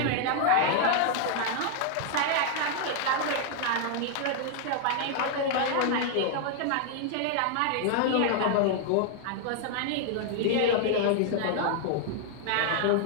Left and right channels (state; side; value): different; both; correlation 0.00